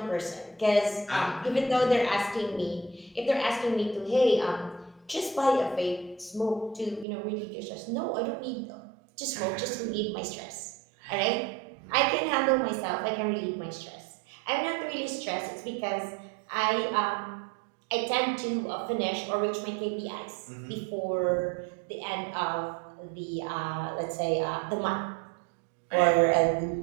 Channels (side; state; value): left; drops out; at 7.1 s